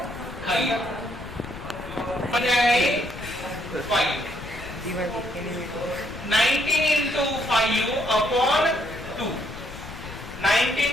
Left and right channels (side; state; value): left; noise; rumble, 13 dB below the sound